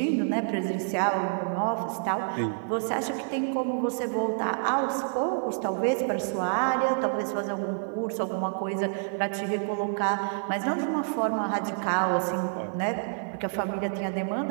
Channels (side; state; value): left; silent; 59 dB below the other